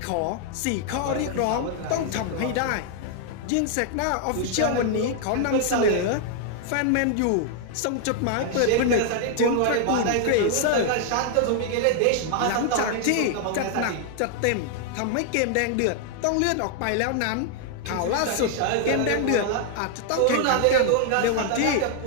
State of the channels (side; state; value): both; different; correlation 0.00